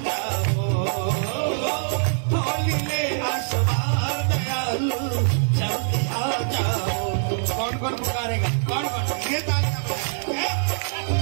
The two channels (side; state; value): left; silent; digital silence